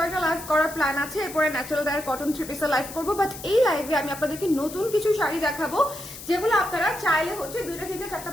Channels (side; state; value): left; noise; hiss, 13 dB below the sound